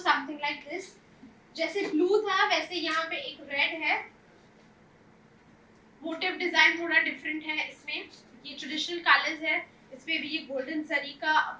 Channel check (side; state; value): both; identical; correlation 1.00